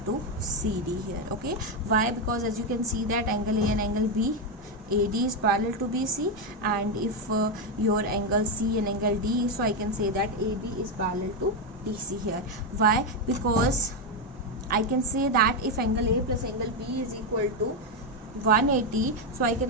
to CD here. Okay, why? Because as you can see that angle A and angle B, AD is parallel to BC, and if your angle C and angle D, so I can say that AB is parallel to DC here. Why? Because I can say that if angle A plus angle B is equal to 180, so I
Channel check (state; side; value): normal; both; correlation 0.06